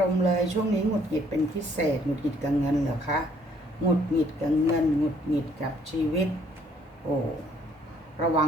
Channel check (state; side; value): normal; both; correlation 0.63